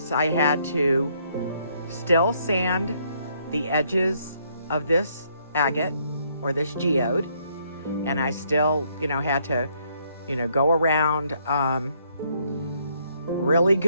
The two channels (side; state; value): both; inverted; correlation -0.70